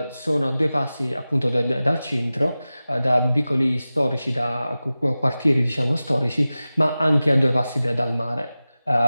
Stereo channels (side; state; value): both; inverted; correlation -0.96